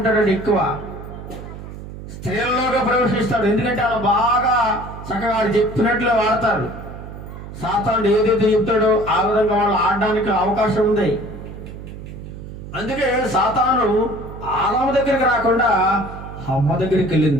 ఎక్కువ స్త్రీలలోగా ప్రవేశిస్తాడు. ఎందుకంటే వాళ్ళు బాగా చక్కగా చెప్పినట్లే వాడతారు. సాతానుడు ఏదైతే చెప్తాడో ఆ విధంగా వాళ్ళు ఆడడానికి అవకాశం ఉంది. అందుకే సాతాను ఆదాము దగ్గరికి రాకుండా హవ్వ దగ్గరికి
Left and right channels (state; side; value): noise; right; hum, 12 dB below the sound